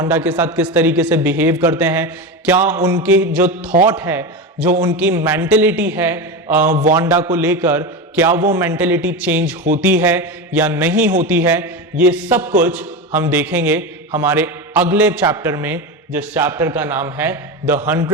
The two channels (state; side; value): normal; both; correlation 0.20